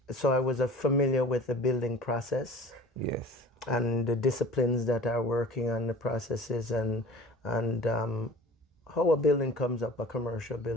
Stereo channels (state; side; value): normal; both; correlation 0.43